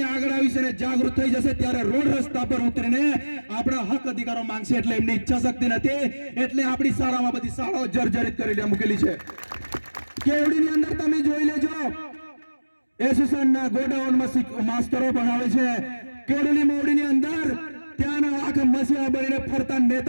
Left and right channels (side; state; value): both; inverted; correlation -1.00